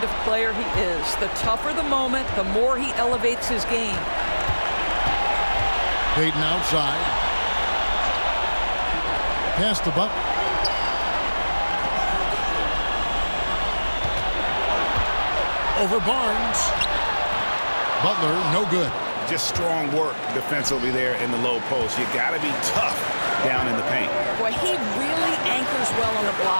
of player he is. The tougher the moment, the more he elevates his game. Payton outside. Pass to Butler. Over Barnes. Butler, no good. Just strong work defensively there in the low post. You got to be tough down in the paint. Boy, he really anchors well on the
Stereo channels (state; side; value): inverted; both; correlation -1.00